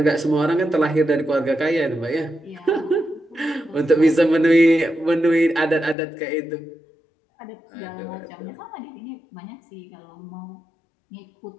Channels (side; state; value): right; drops out; at 6.0 s